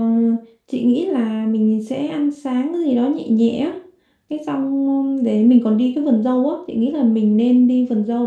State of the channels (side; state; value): both; identical; correlation 1.00